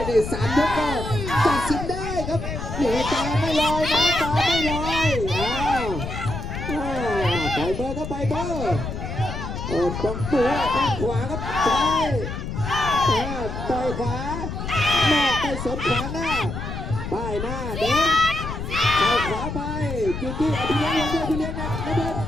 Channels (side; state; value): left; noise; rumble, 6 dB below the sound